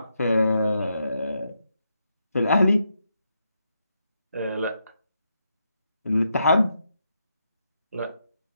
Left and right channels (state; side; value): inverted; both; correlation -0.82